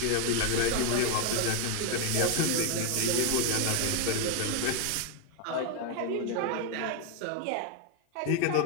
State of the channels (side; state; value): both; different; correlation 0.01